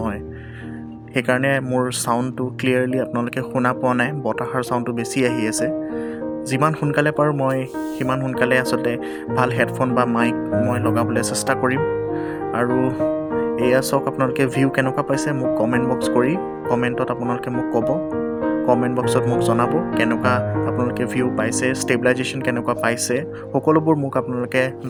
সেইকাৰণে মোৰ চাউণ্ডটো ক্লিয়াৰলি আপোনালোকে শুনা পোৱা নাই। বতাহৰ চাউণ্ডটো বেছি আহি আছে। যিমান সোনকালে পাৰোঁ মই সিমান সোনকালে আচলতে ভাল হেডফোন বা মাইক মই লগাবলৈ চেষ্টা কৰিম। আৰু এয়া চাওক, আপোনালোকে ভিউ কেনেকুৱা পাইছে মোক কমেণ্ট বক্স কৰি কমেণ্টত আপোনালোকে মোক ক'ব। কমেণ্ট বক্সত মোক জনাব কেনেকুৱা আপোনালোকে ভিউ পাইছে, ষ্টেবিলাইজেশ্যন কেনেকুৱা পাইছে, সকলোবোৰ মোক আপোনালোকে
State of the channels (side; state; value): both; identical; correlation 1.00